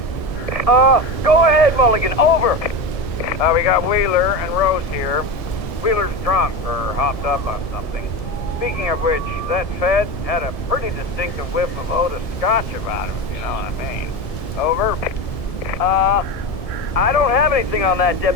Go ahead, Mulligan. Over. We got Wheeler and Rose here. Wheeler's drunk or hopped up on something. Speaking of which, that Fed had a pretty distinctive whiff of Otis Scotch about him, if you know what I mean. Over. I don't have anything on that,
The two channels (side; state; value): right; late; 1.7 ms